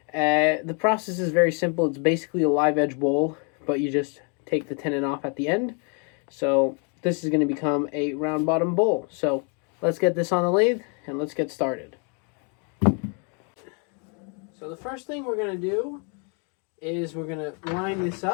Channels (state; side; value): quieter; right; 37.5 dB